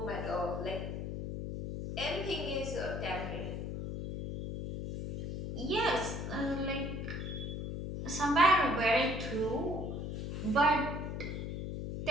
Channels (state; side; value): noise; left; hum, 4 dB below the sound